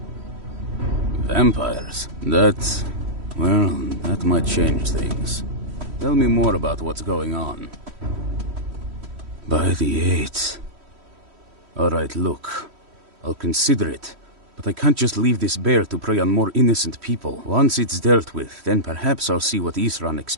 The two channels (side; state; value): left; late; 3.1 ms